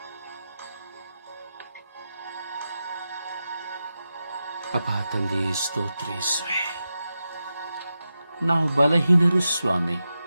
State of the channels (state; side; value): inverted; both; correlation -0.90